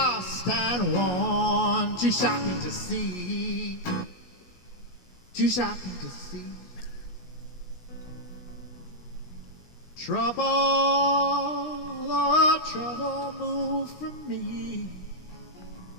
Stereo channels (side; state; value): right; late; 16 ms